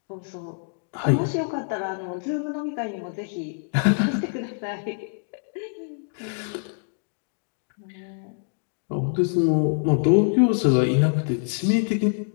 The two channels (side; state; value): right; silent; digital silence